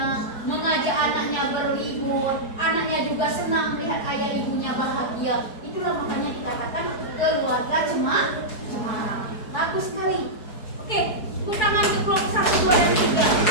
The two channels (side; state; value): right; late; 4.7 ms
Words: mengajak anaknya berlibur. Anaknya juga senang melihat ayah ibunya bahagia. Itulah makanya dikatakan keluarga cemara. Bagus sekali. Oke, tepuk tangan untuk kelompok 1, 2, dan 3.